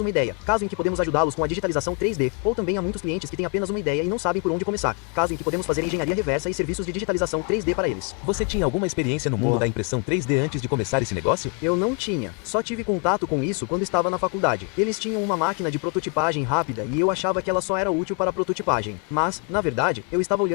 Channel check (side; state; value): right; quieter; 36.0 dB